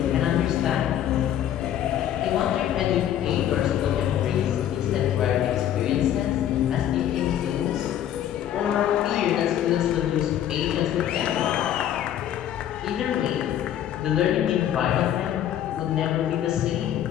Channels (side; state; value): right; quieter; 10.9 dB